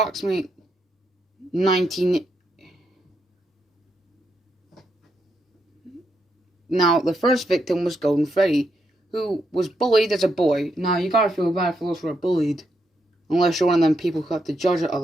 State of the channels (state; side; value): normal; both; correlation 0.81